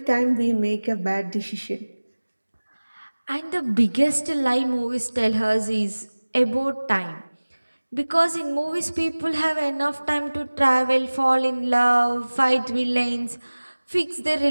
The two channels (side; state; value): both; inverted; correlation -1.00